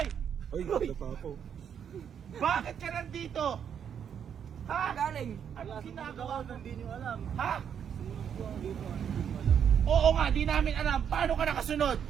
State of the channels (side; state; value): left; quieter; 8.2 dB